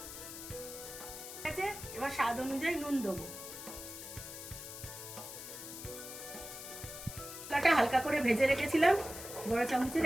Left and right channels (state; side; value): noise; left; hiss, 10 dB below the sound